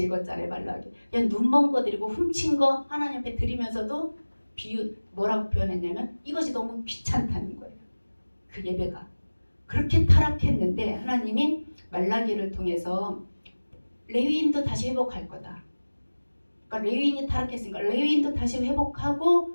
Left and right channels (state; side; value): inverted; both; correlation -1.00